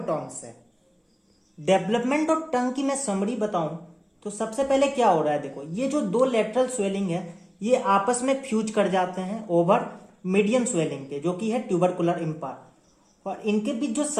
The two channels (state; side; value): identical; both; correlation 1.00